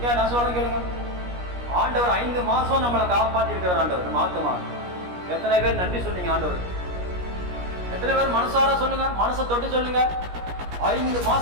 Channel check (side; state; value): left; late; 17 ms